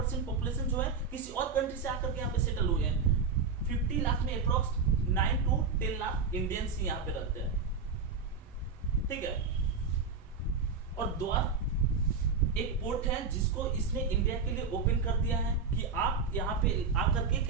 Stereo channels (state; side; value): quieter; left; 5.1 dB